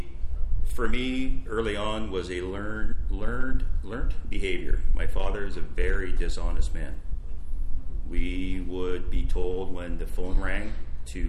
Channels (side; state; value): both; identical; correlation 1.00